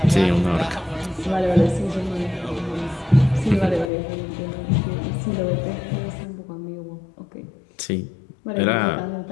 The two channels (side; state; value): right; drops out; at 3.9 s